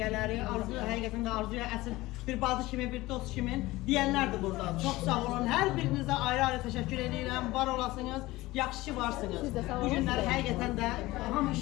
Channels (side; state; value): right; quieter; 19.0 dB